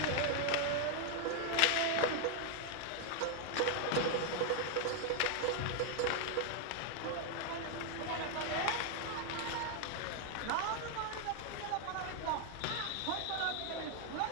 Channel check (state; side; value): different; both; correlation 0.00